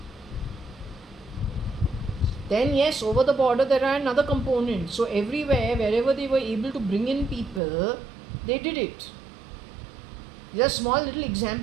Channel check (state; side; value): drops out; left; at 7.6 s